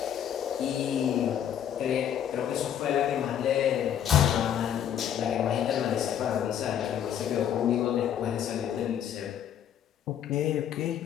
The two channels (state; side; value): quieter; right; 9.6 dB